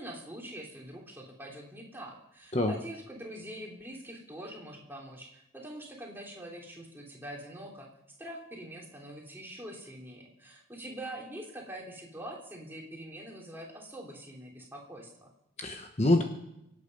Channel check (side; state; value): both; normal; correlation 0.66